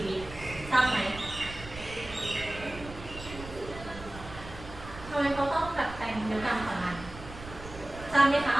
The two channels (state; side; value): noise; right; rumble, 13 dB below the sound